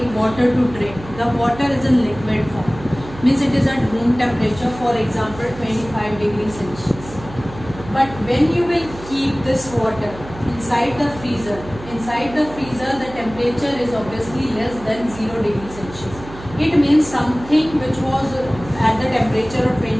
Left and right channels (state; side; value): noise; right; hum, 15 dB below the sound